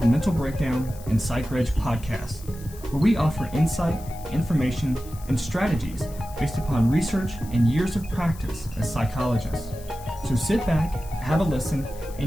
Mental Breakdown and Psychreg podcast, where we offer insight, information, and strategies based upon research and years of practice as psychologists. So sit back, have a listen,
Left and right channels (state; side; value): noise; left; hiss, 20 dB below the sound